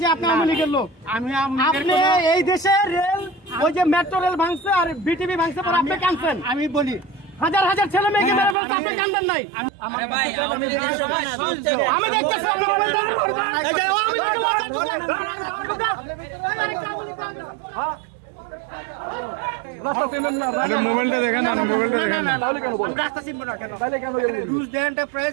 যায় আপনি আওয়ামী লীগের লোক। আপনি এই দেশে রেল, ওই যে মেট্রো রেল ভাঙছে আর বিটিভি ভাঙছে পর আপনি কাঁদছেন। আমি বলি হাজার হাজার ছেলে মেয়েকে মেরে বলতে আপনি কাঁদেন নাই। আমি দেখতেছি আপনি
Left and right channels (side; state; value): left; drops out; at 8.6 s